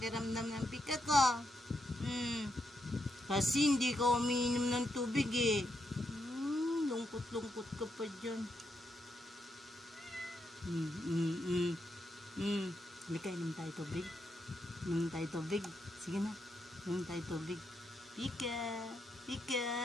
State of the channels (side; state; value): both; normal; correlation 0.82